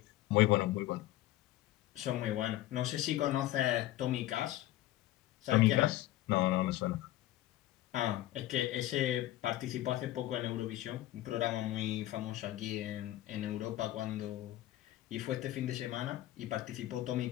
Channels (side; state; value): right; quieter; 15.0 dB